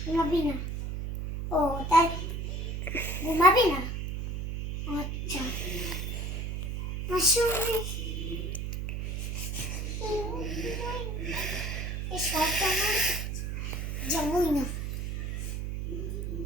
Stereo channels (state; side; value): noise; right; hum, 3 dB below the sound